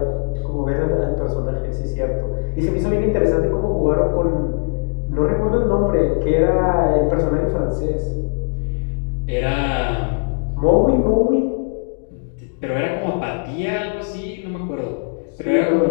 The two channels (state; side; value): silent; right; digital silence